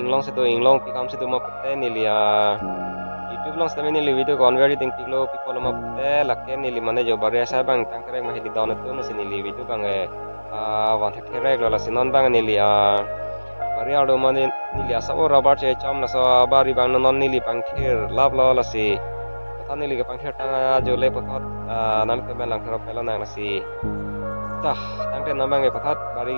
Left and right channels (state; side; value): inverted; both; correlation -1.00